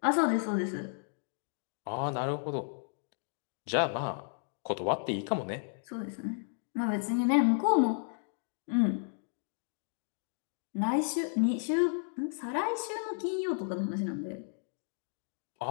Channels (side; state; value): right; silent; digital silence